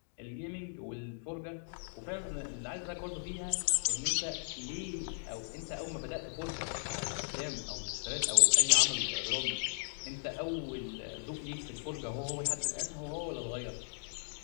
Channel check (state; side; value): silent; right; digital silence